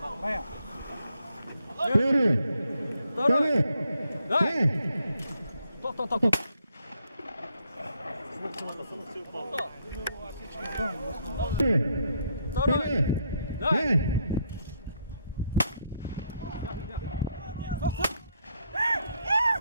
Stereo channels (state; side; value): inverted; both; correlation -0.74